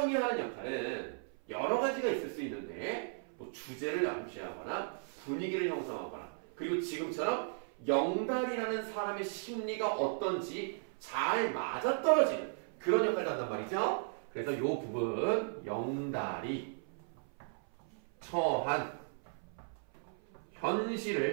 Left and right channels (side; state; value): left; silent; 54 dB below the other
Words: 하는 역할은 여러 가지가 있을 수 있는데 뭐 주제를 암시하거나 분위기를 형성하거나 그리고 지금처럼 영달이라는 사람의 심리가 어떤지 잘 맞아떨어지는 그런 역할을 한단 말이죠. 그래서 이 부분 영달이 처한